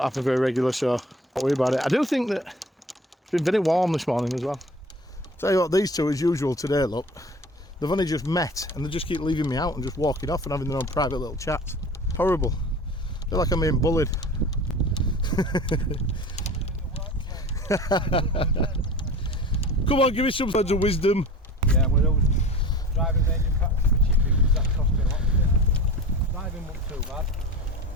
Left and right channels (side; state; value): both; normal; correlation 0.39